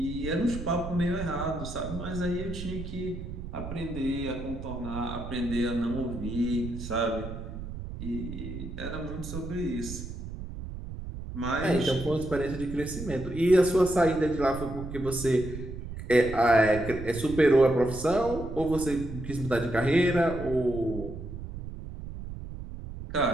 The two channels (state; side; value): noise; right; rumble, 9 dB below the sound